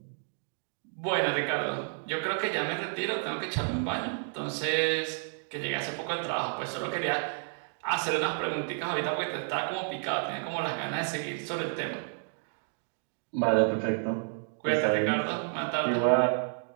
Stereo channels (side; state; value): left; silent; digital silence